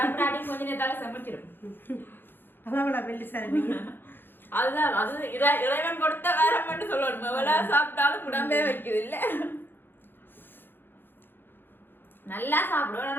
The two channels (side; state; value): right; late; 0.099 ms